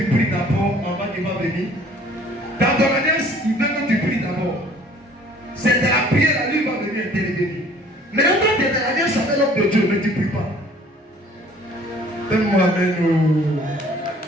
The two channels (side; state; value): both; normal; correlation 0.54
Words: pries d'abord avant qu'il va venir. Dans ton alliance, il veut que tu pries d'abord. C'est de la prière, là, lui va venir intervenir. Mais quand tu es dans l'alliance avec l'homme de Dieu, mais tu ne pries pas. Donne-moi amen.